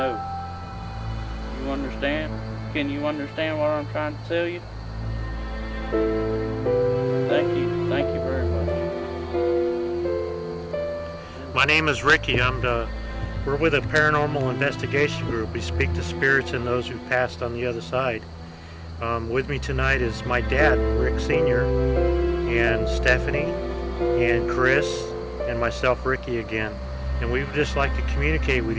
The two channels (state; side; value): identical; both; correlation 1.00